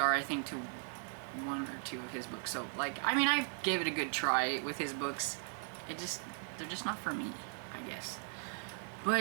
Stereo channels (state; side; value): silent; left; 53 dB below the other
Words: I think, to 1 or 2 of his books. So like, I mean, I gave it a good try with his books. They're just not for me, I guess.